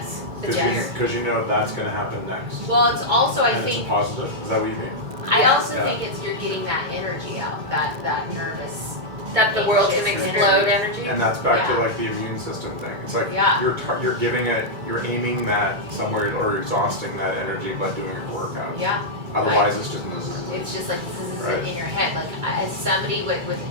Because you know that's going to happen next. Well, it's also, I and think, it's a positive. Is that what you mean? I also think it's you're getting that energy out, that nervous. That the world can anxious explode energy. And that's back to like the immune system thing. It's like you're giving it, you're aiming that somewhere or exhausting that energy by doing your workout. Yeah. Otherwise, it's just It's just like this is Right. in your head. Like as somebody with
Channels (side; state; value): left; late; 2.2 ms